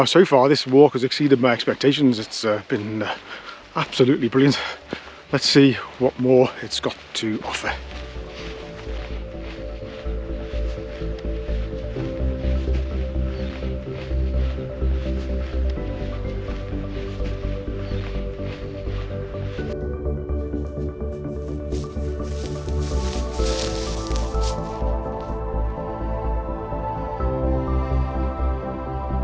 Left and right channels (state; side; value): identical; both; correlation 1.00